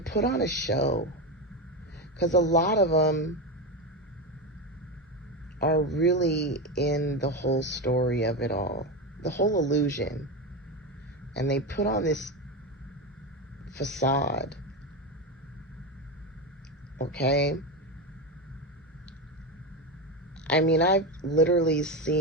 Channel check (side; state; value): both; normal; correlation 0.15